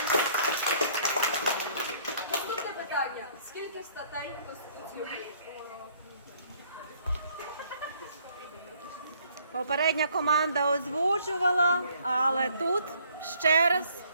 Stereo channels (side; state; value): both; inverted; correlation -0.62